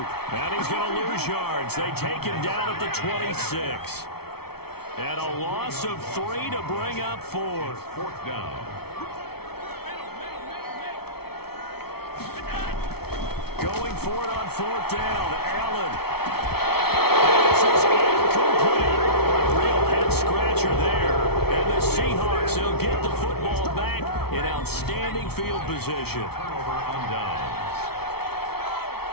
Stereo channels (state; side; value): late; right; 0.95 ms